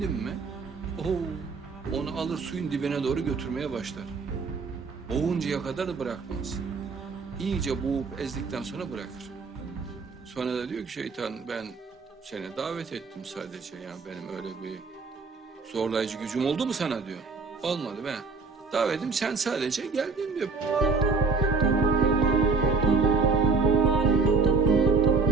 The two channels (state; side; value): quieter; left; 4.4 dB